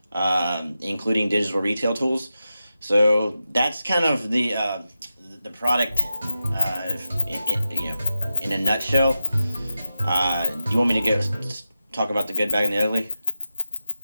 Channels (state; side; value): inverted; both; correlation -0.91